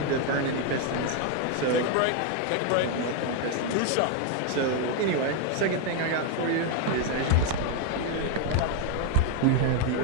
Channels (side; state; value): both; different; correlation 0.01